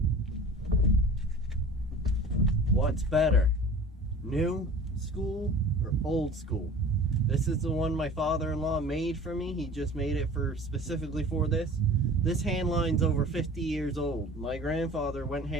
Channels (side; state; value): both; normal; correlation 0.42